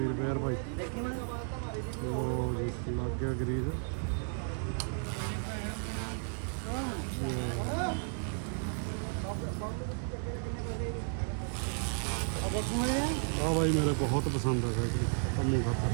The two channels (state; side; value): silent; left; 55 dB below the other